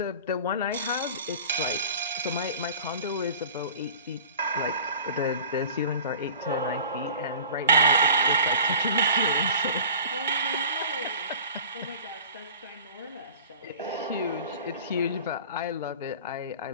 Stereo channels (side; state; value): both; inverted; correlation -0.41